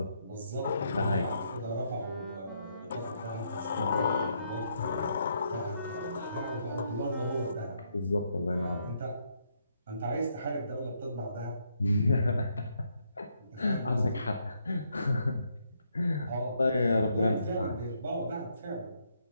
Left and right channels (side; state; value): both; inverted; correlation -0.75